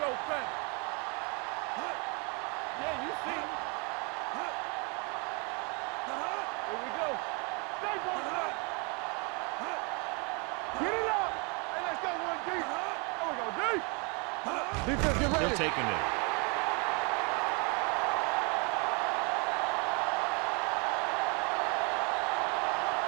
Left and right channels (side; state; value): left; quieter; 33.1 dB